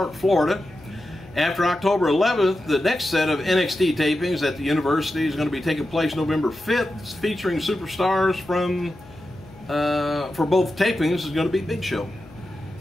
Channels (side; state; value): left; noise; hum, 22 dB below the sound